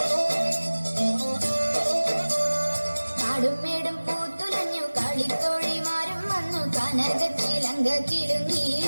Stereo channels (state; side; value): inverted; both; correlation -1.00